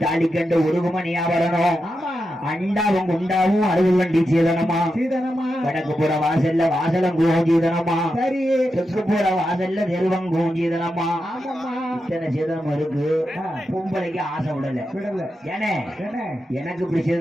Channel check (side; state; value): both; normal; correlation 0.88